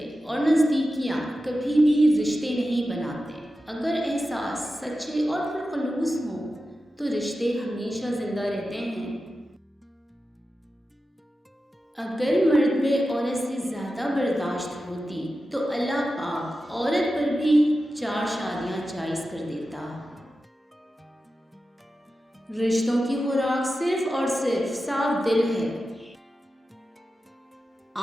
और नज़दीकियाँ कभी भी रिश्ते नहीं बनाते। अगर एहसास सच्चे और पुरखलूस हों तो रिश्ते हमेशा जिंदा रहते हैं। अगर मर्द में औरत से ज़्यादा बर्दाश्त होती तो अल्लाह पाक औरत पर भी 4 शादियाँ जायज़ कर देता। रिश्तों की खुराक सिर्फ और सिर्फ साफ दिल है।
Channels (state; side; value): normal; both; correlation 0.92